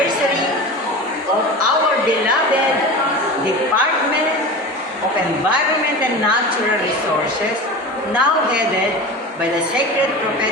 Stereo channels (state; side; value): normal; both; correlation 0.31